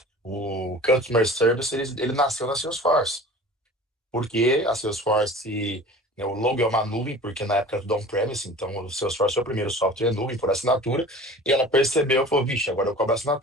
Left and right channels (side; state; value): both; normal; correlation 0.41